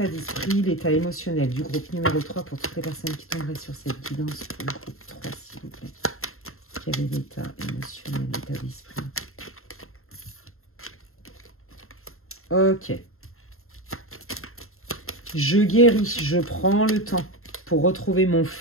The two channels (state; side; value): late; right; 0.62 ms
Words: d'esprit, l'état émotionnel du groupe numéro 3 pour toutes les personnes qui tomberaient sur cette guidance pour le groupe 3, s'il vous plaît. Quel est l'état émotionnel, l'état d'esprit? Ok. Je guéris, je prends le temps pour retrouver mon